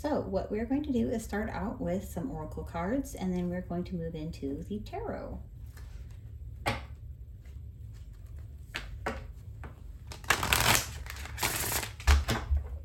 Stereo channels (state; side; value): identical; both; correlation 1.00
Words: what we're going to do is start out with some oracle cards, and then we're going to move into the tarot.